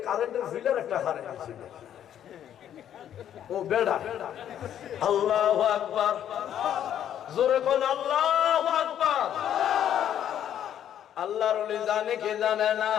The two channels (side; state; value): right; quieter; 10.2 dB